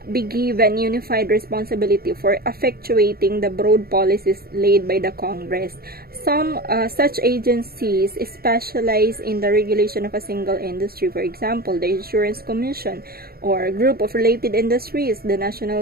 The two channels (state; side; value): late; left; 0.44 ms